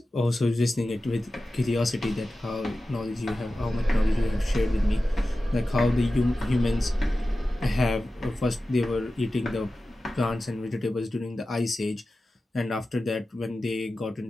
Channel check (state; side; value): normal; both; correlation 0.94